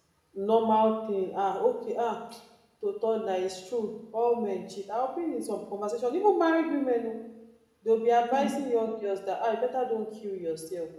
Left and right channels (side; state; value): both; identical; correlation 1.00